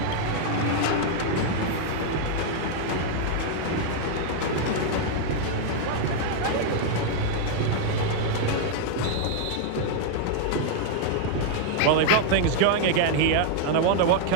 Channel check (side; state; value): both; different; correlation 0.00